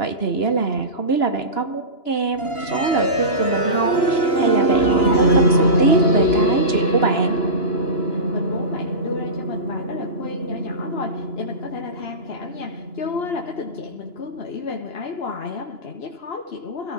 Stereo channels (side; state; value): right; late; 2.9 ms